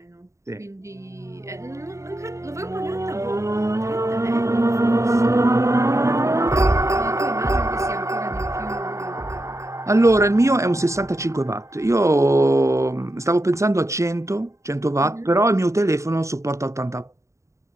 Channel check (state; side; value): late; left; 0.14 ms